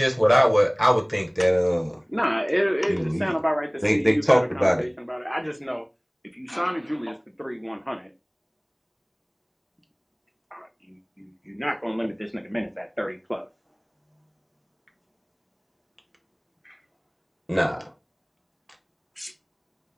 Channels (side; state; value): both; identical; correlation 1.00